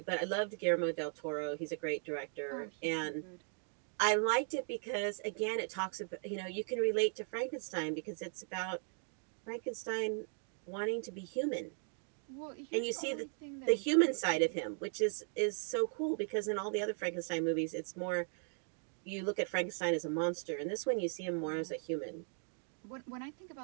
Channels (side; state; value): left; silent; 52 dB below the other